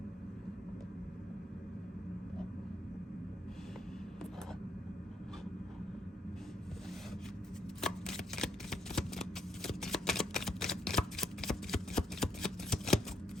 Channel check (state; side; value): normal; both; correlation 0.75